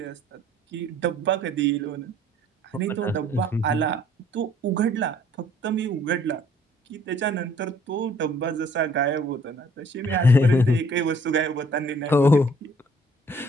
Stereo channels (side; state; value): both; normal; correlation 0.59